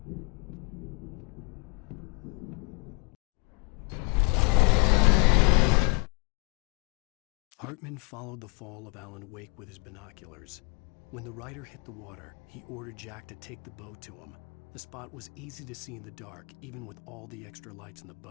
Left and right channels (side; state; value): right; quieter; 31.3 dB